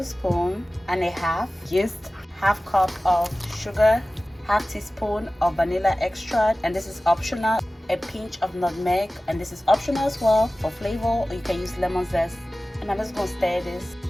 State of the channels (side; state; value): both; normal; correlation 0.97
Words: and a half yeast, half cup of sugar, half teaspoon of vanilla extract, and this is optional, a pinch of nutmeg, and this is optional as well for flavor, or you can use lemon zest. And I'm just going to stir this.